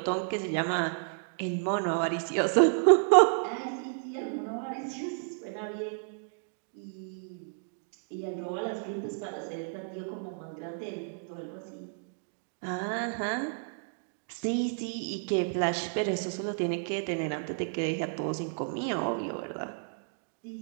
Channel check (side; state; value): left; silent; digital silence